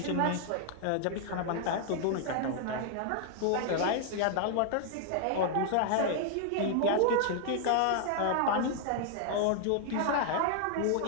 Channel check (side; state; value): both; different; correlation 0.00